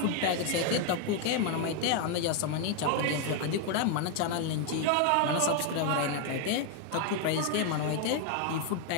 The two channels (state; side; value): different; both; correlation 0.01